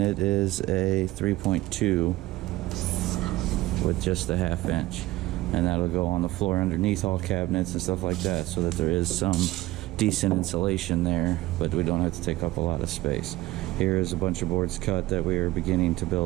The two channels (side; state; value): left; quieter; 17.6 dB